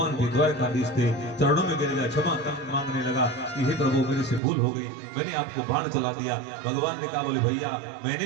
के द्वारकाधीश थे। चरणों में गिर गया, क्षमा मांगने लगा कि हे प्रभु मेरे से भूल हो गई, मैंने आपको बाण चला दिया। भगवान ने कहा, बोले भैया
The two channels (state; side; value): drops out; left; at 4.4 s